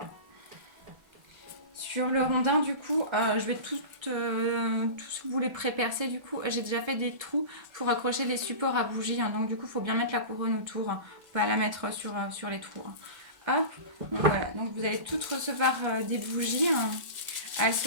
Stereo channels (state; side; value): late; left; 1.3 ms